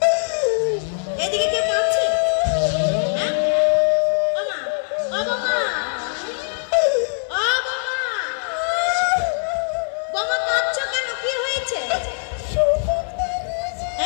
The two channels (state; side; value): silent; right; digital silence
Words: এদিকে কে কাঁদছে? হ্যাঁ? ও মা, ও বাবা, ও বাবা,